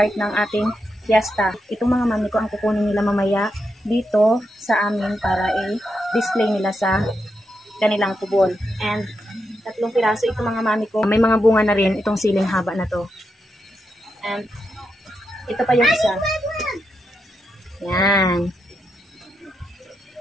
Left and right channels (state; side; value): normal; both; correlation 0.84